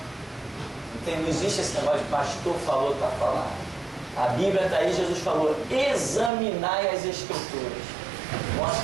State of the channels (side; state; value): left; drops out; at 6.3 s